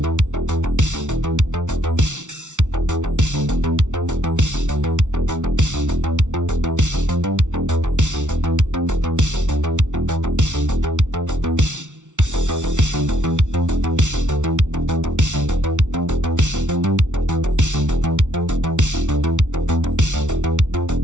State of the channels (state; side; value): late; left; 0.86 ms